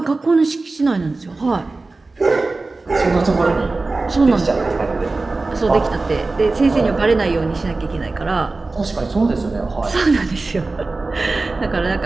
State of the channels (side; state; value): left; quieter; 3.5 dB